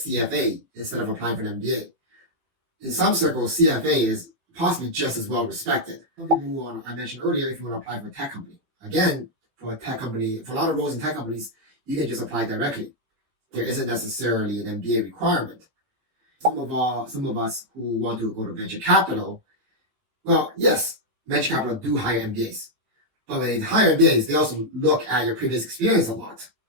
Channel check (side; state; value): left; late; 15 ms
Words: instead of applying for an MBA. In some circles, CFA is possibly just as well respected. Some people who I mentioned earlier, if you want to apply for a tech company. Again, for a lot of roles in tech companies, you can just apply directly. There isn't necessarily an MBA requirement. Some of us who want to go to venture capital, well, yes, venture capital do hire MBAs. But when they hire MBAs, they also look at your previous experience a lot.